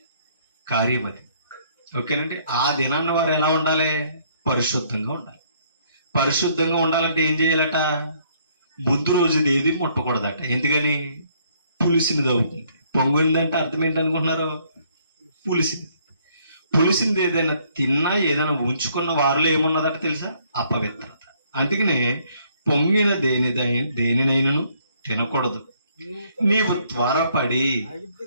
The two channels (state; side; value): inverted; both; correlation -0.66